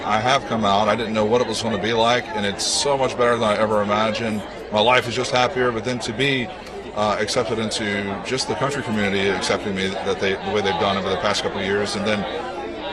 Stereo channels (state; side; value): identical; both; correlation 1.00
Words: I have come out, I didn't know what it was going to be like, and it's so much better than I ever imagined. My life is just happier, but then to be accepted into just the country community accepting me the way they've done over the past couple of years, and then